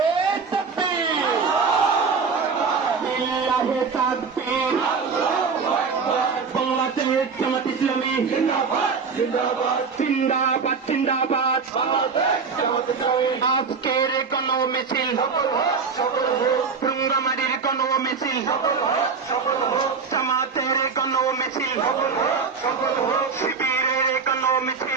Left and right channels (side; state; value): left; quieter; 5.3 dB